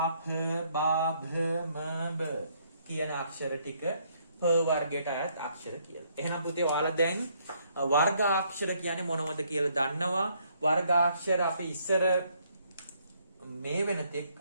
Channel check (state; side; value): inverted; both; correlation -0.69